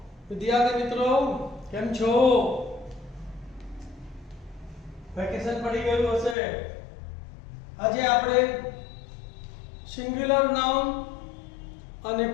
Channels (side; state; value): right; drops out; at 6.4 s